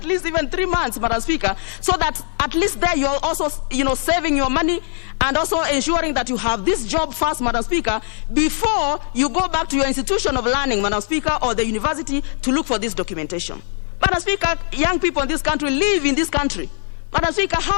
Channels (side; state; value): right; silent; 55 dB below the other